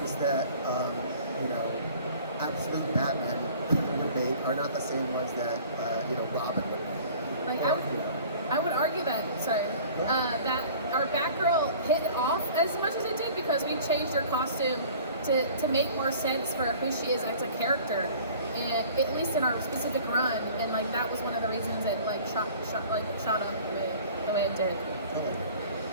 that absolute Batman would make are not the same ones that Robin would make. I would argue that that our Batgirl hit off as much as it did because we changed her costume to make more sense for who she is as a character, and at least in our specific run, and that was one of the reasons it shot up the way it did.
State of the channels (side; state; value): both; inverted; correlation -0.47